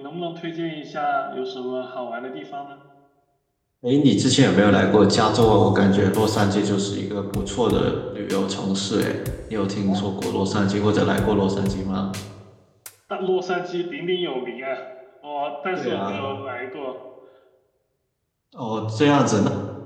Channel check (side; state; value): both; identical; correlation 1.00